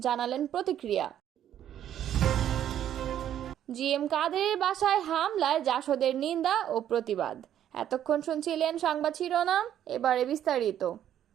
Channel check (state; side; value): quieter; left; 10.7 dB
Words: জানালেন প্রতিক্রিয়া। জিএম কাদেরের বাসায় হামলায় জাসদের নিন্দা ও প্রতিবাদ। এতক্ষণ শুনছিলেন সংবাদ শিরোনাম, এবারে বিস্তারিত।